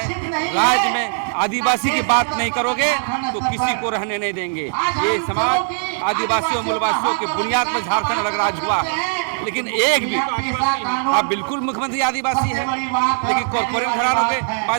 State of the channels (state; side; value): silent; left; digital silence